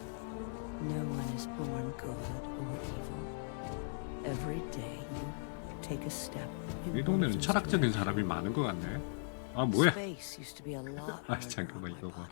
No one is born good or evil. Every day you take a step. 이 동네는 철학적인 사람이 많은 것 같네. 아, 뭐야? Space used to be a lot 아, 잠깐만, 이거 봐.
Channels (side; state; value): right; silent; 52 dB below the other